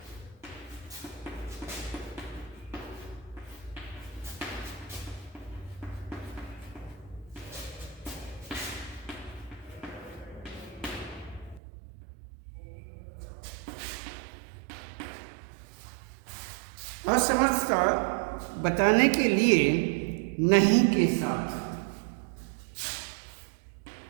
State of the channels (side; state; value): left; drops out; at 11.6 s